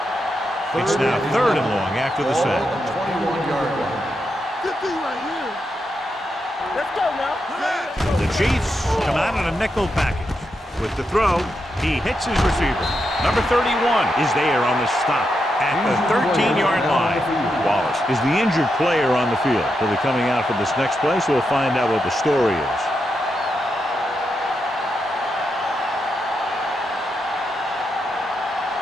It's now 3rd and long after the sack. 21-yard line. Good thing right here. Let's go now. The Chiefs come out in a nickel package. With the throw, he hits his receiver. Number 31 is there on the stop at the 13-yard line. Wallace is the injured player on the field. He'll be coming out for this next play, so we'll find out what the story is.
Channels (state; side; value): normal; both; correlation 0.84